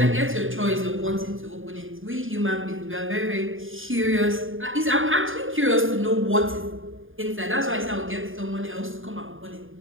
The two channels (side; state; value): left; late; 0.59 ms